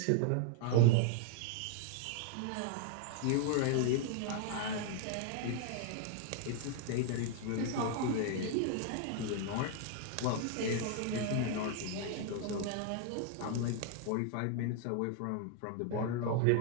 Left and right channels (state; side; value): different; both; correlation 0.00